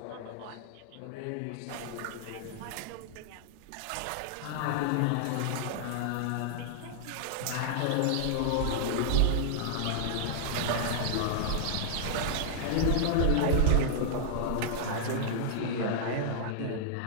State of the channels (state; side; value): different; both; correlation -0.01